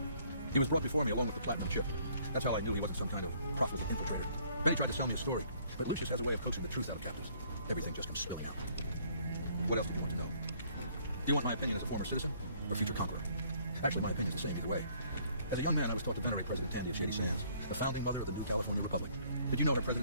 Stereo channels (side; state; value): both; inverted; correlation -0.62